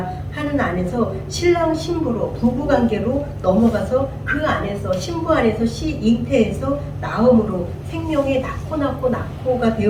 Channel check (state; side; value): identical; both; correlation 1.00